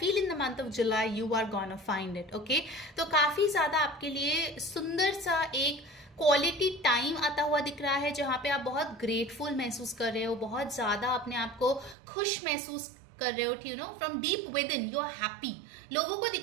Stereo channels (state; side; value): drops out; left; at 12.0 s